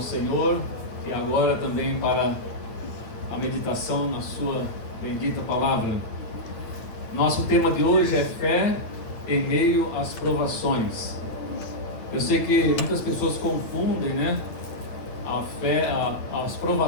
Senhor e agora também para a meditação na sua bendita palavra. Nosso tema de hoje é fé em meio às provações. Eu sei que muitas pessoas confundem, a fé, as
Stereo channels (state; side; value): late; right; 9.0 ms